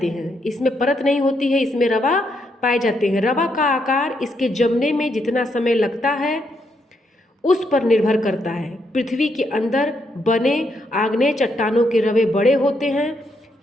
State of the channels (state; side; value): normal; both; correlation 0.77